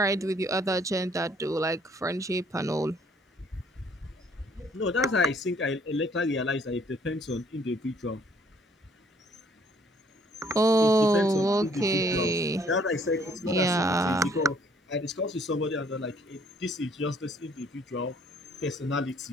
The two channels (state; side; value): normal; both; correlation 0.62